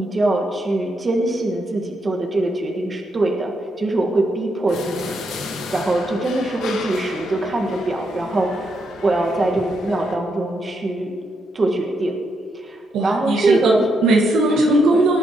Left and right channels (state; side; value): normal; both; correlation 0.80